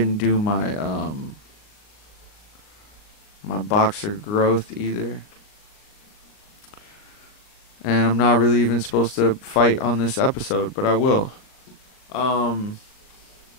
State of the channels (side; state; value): right; late; 39 ms